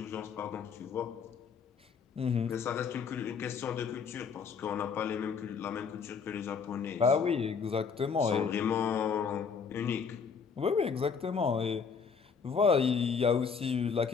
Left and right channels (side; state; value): right; quieter; 5.9 dB